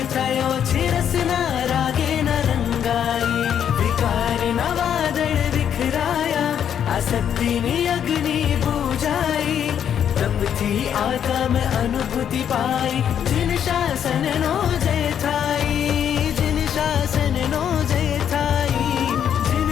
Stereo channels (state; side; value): quieter; right; 9.0 dB